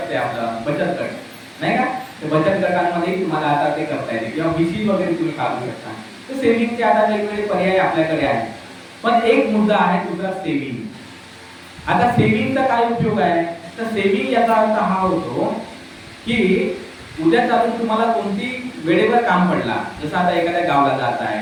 आपलं बचत गट, नाही का? ते बचत गटांमध्ये तुम्हाला आता ते करता येते किंवा बीसी वगैरे तुम्ही काढू शकता. तर सेव्हिंगचे आता वेगवेगळे पर्याय आपल्याकडे आहेत. पण एक मुद्दा आहे तुझा सेव्हिंग. आता सेव्हिंगचा काय उपयोग आहे? तर सेव्हिंग याचा अर्थ हा होतो की उद्या चालून तुम्हाला कोणती वेळेवर काम पडला, जसं आता एखाद्या गावाला जात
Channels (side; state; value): both; identical; correlation 1.00